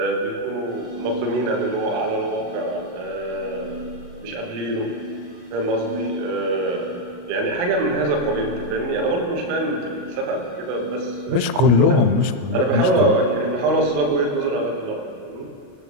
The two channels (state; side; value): late; left; 33 ms